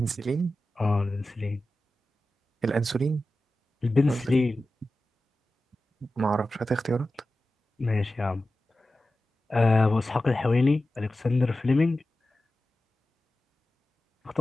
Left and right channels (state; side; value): normal; both; correlation 0.94